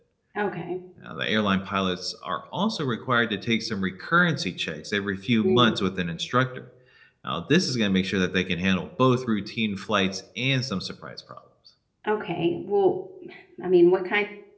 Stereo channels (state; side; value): identical; both; correlation 1.00